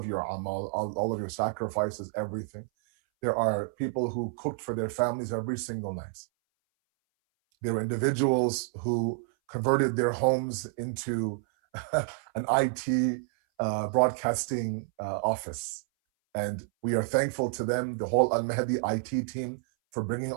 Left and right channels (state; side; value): silent; left; 58 dB below the other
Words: your amal, all of your sacrifices, everything. There are people who cooked for their families every single night. There were individuals who converted their homes into an IT broadcasting office. And we are thankful to them, the whole Al-Mahdi IT team, for bringing